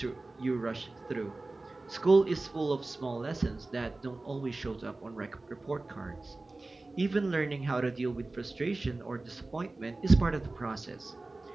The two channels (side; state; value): left; quieter; 3.1 dB